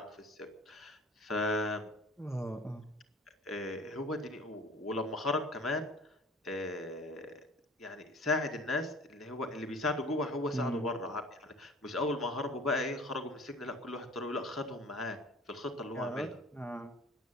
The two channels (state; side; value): normal; both; correlation 0.45